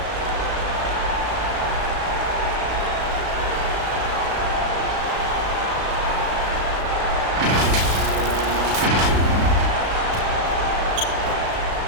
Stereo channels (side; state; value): left; late; 37 ms